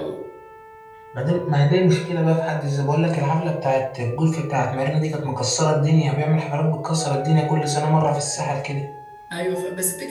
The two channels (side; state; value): both; identical; correlation 1.00